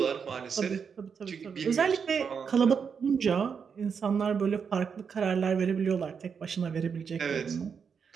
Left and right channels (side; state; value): left; quieter; 6.4 dB